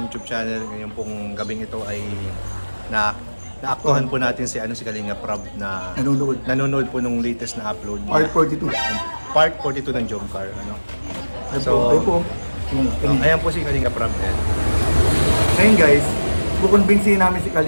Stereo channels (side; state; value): both; inverted; correlation -1.00